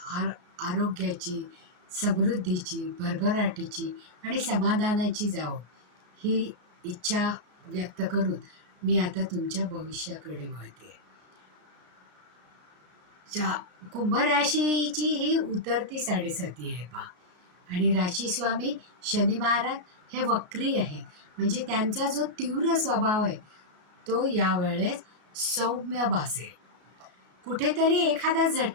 आरोग्याची, समृद्धीची, भरभराटीची आणि समाधानाची जावो, ही इच्छा व्यक्त करून मी आता तुमच्या भविष्याकडे वळते. कुंभ राशीची ही उतरती साडेसाती आहे पहा. आणि राशीस्वामी शनी महाराज हे वक्री आहेत. म्हणजे त्यांचा जो तीव्र स्वभाव आहे तो यावेळेस सौम्य भासेल. कुठेतरी एखादा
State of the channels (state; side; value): late; left; 33 ms